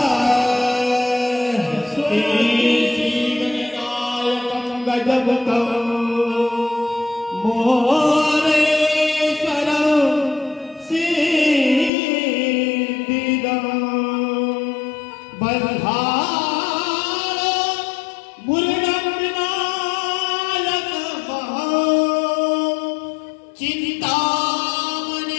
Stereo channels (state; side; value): drops out; right; at 11.9 s